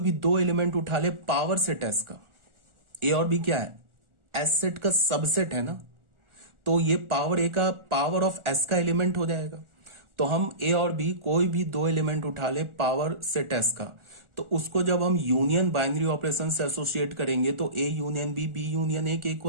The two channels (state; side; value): late; left; 1.4 ms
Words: दो एलिमेंट उठा ले पावर सेट एस का। ए और बी क्या है, एस सेट का सबसेट है ना, तो ये पावर ए का पावर ऑफ एस का एलिमेंट हो जाएगा। तो हम ए और बी कोई भी दो एलिमेंट उठा ले पावर सेट एस का, तो उसको जब हम यूनियन बाइनरी ऑपरेशन से एसोसिएट करेंगे तो A union B union A के